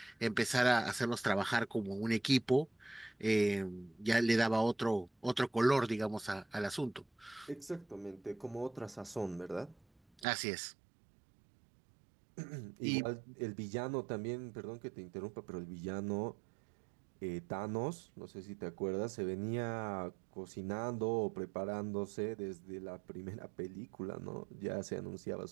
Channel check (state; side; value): drops out; left; at 10.2 s